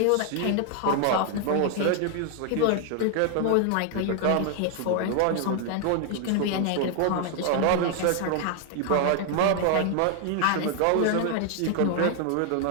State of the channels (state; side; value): different; both; correlation 0.00